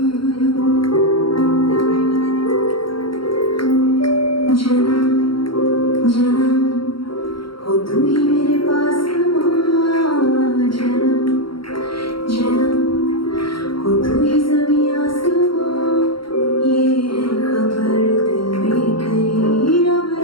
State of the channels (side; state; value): right; late; 0.73 ms